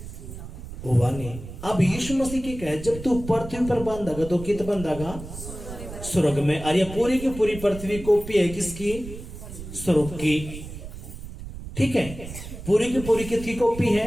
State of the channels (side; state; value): right; noise; rumble, 11 dB below the sound